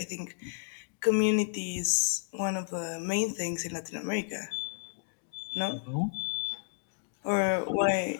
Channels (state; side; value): silent; right; digital silence